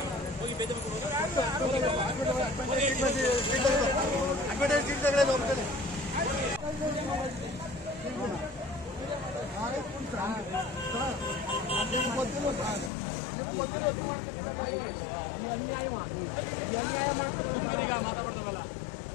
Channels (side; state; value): right; drops out; at 12.9 s